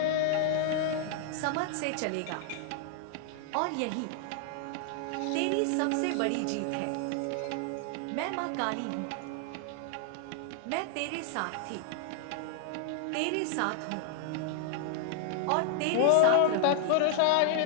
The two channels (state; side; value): different; both; correlation -0.01